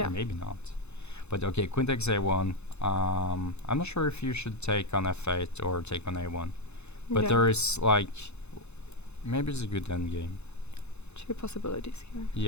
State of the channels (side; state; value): right; late; 0.81 ms